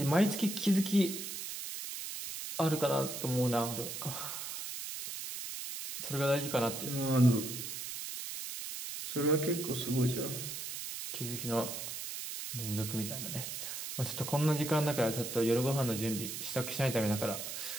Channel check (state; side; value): noise; right; hiss, 6 dB below the sound